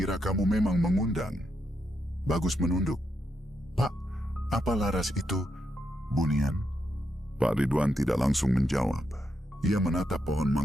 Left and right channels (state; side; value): normal; both; correlation 0.82